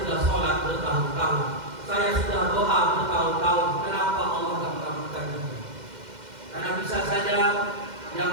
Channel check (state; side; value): late; left; 2.1 ms